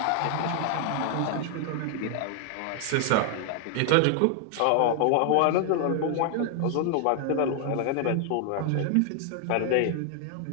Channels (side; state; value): both; different; correlation 0.00